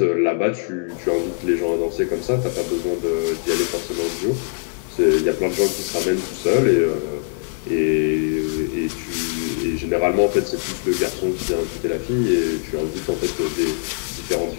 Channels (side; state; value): right; silent; 64 dB below the other